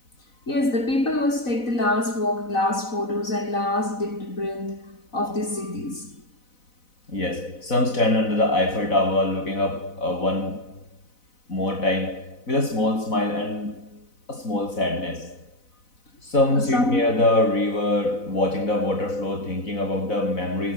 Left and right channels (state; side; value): late; right; 4.0 ms